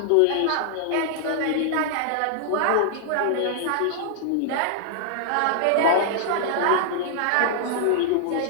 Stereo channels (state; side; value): different; both; correlation -0.01